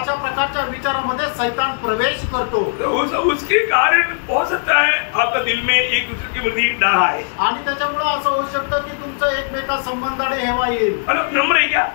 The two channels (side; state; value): right; silent; 66 dB below the other